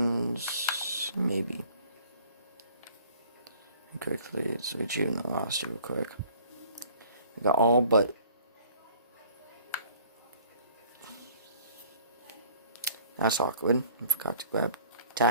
Maybe. Quickly switch even the roster real quick. We got all but. That's awkward. I forgot to grab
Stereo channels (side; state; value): both; inverted; correlation -0.53